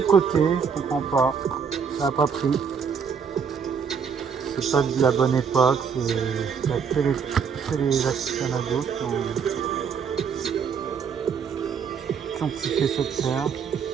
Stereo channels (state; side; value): quieter; left; 6.4 dB